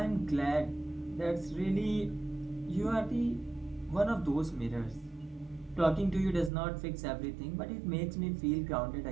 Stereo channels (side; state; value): left; drops out; at 6.5 s